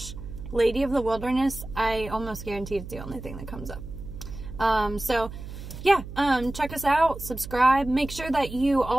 Lady of the Wilderness, I almost guarantee it's the only thing that comes up. So yeah, check us out, subscribe. Make sure that you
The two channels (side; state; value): right; noise; hum, 11 dB below the sound